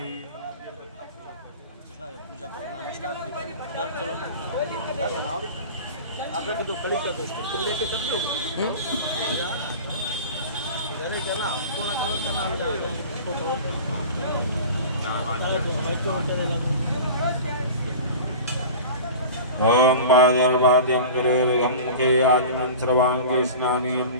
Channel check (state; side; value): inverted; both; correlation -0.35